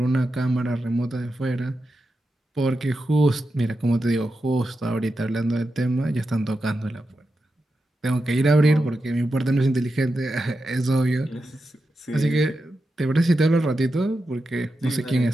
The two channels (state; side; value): normal; both; correlation 0.89